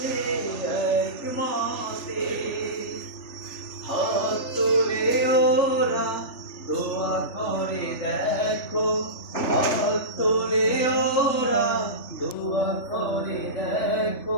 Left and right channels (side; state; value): right; late; 3.4 ms